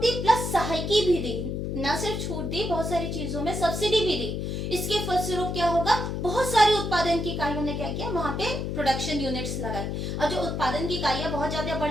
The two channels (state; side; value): noise; left; hum, 3 dB below the sound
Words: प्लस सहायकी भी दी। न सिर्फ छूट दी, बहुत सारी चीजों में सब्सिडी भी दी। इसके फलस्वरूप क्या होगा, बहुत सारी उत्पादन की इकाइयों ने क्या किया, वहां पे प्रोडक्शन यूनिट्स लगाए। अब जो उत्पादन की इकाइयां बहुत ज्यादा